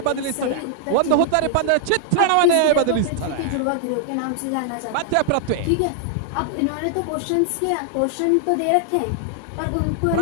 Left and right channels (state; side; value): different; both; correlation -0.01